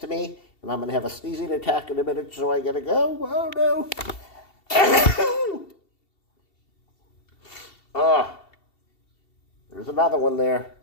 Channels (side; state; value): right; late; 2.7 ms